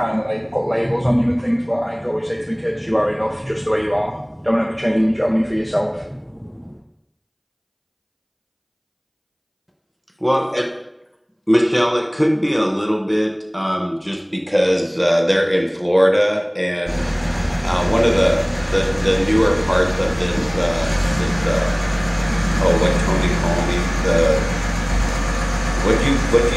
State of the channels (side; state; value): both; identical; correlation 1.00